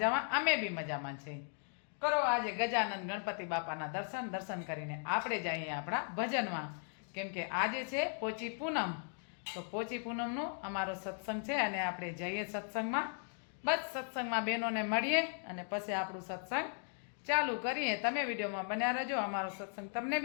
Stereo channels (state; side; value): silent; right; 53 dB below the other